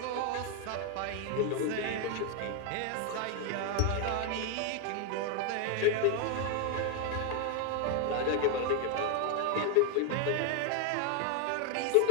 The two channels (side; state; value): both; different; correlation 0.00